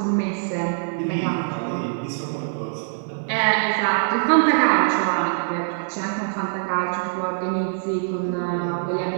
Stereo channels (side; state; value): left; silent; 63 dB below the other